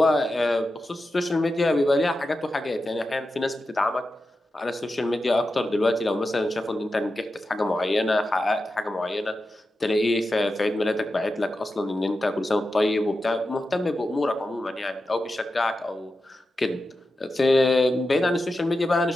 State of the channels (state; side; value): normal; both; correlation 0.91